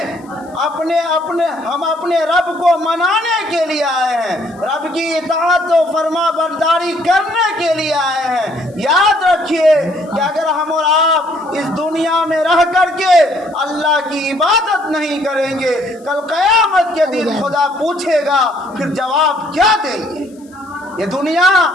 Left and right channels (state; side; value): noise; left; hiss, 30 dB below the sound